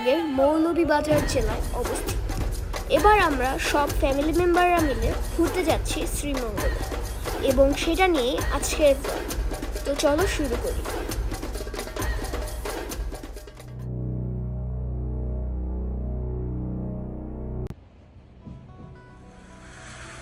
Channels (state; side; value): identical; both; correlation 1.00